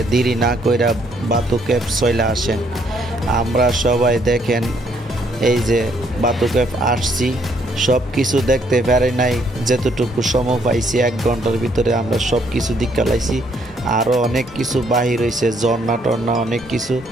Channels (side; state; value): both; normal; correlation 0.69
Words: দেরি না কইরা বাতুকেপ চলে আসেন। আমরা সবাই দেখেন এই যে বাতুকেপ আসছি, সব কিছু দেখতে পারি নাই, যেতটুকু সময় পাইছি 1 ঘন্টার ভিতরে আমরা সব কিছু দেখালাইছি। আরও অনেক কিছু বাহির হয়েছে, ঝর্ণা টর্ণা অনেক কিছু,